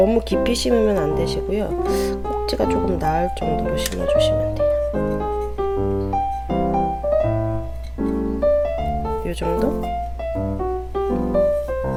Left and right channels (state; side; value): identical; both; correlation 1.00